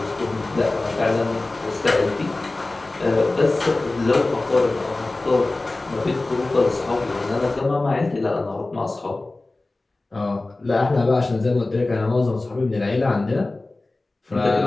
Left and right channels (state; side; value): quieter; right; 3.1 dB